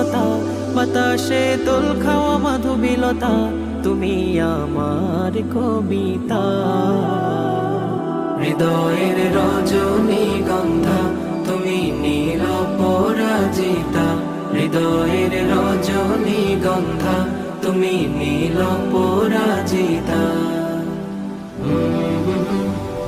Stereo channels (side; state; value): both; identical; correlation 1.00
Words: বাতাসে দোল খাওয়া মাধুবিলতা, তুমি আমার কবিতা। হৃদয়ের রজনীগন্ধা তুমি নীল পরাজিতা, হৃদয়ের রজনীগন্ধা তুমি নীল পরাজিতা।